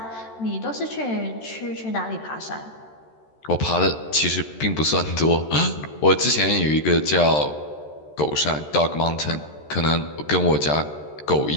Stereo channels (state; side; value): late; right; 13 ms